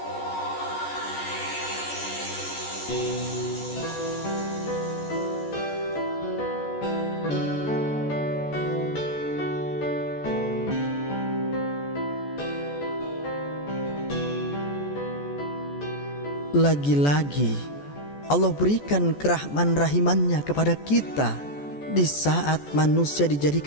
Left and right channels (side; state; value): right; late; 14 ms